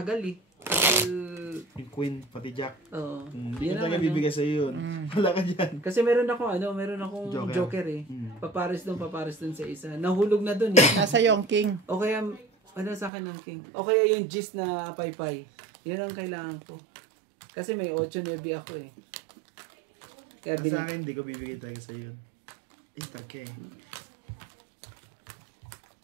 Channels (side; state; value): left; drops out; at 13.1 s